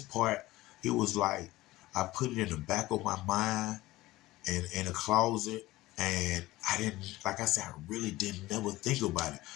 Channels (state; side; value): quieter; right; 18.0 dB